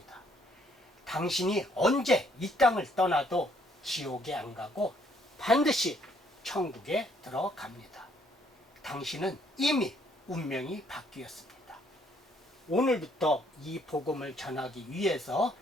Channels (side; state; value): both; normal; correlation 0.67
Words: 당신이 언제 이 땅을 떠나도 지옥에 안 가고 반드시 천국에 들어갑니다. 당신은 이미 운명이 바뀌었습니다. 오늘부터 이 복음을 전하기 위해서